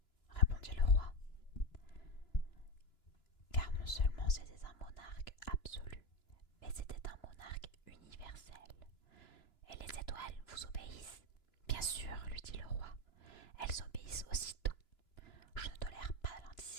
répondit le roi. Car non seulement c'était un monarque absolu, mais c'était un monarque universel. Et les étoiles vous obéissent? Bien sûr, lui dit le roi. Elles obéissent aussitôt. Je ne tolère pas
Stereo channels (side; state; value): right; late; 2.9 ms